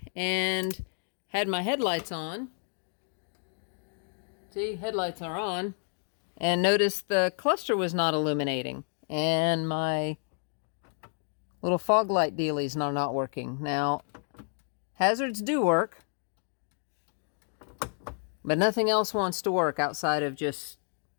and had my headlights on. See, headlights are on. And noticed the cluster was not illuminating. And my little fog light dealies are not working. Now, hazards do work. But nothing else wants to work outside of just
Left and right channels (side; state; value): right; silent; 58 dB below the other